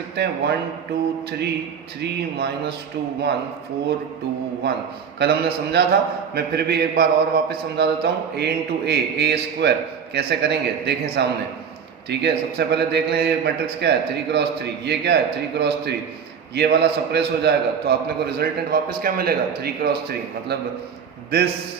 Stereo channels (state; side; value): quieter; left; 7.0 dB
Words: हैं। 1 2 3 3 माइनस 2 1 4 2 1। कल हमने समझा था, मैं फिर भी एक बार और वापस समझा देता हूँ। a इंटू a स्क्वायर कैसे करेंगे देखें सामने, ठीक है। सबसे पहले देख लें ये मैट्रिक्स क्या है? 3 क्रॉस 3। ये क्या है? 3 क्रॉस 3। ये वाला सप्रेस हो जाएगा, तो आपने को रिजल्टेंट वापस क्या मिलेगा? 3 क्रॉस 3, मतलब दिस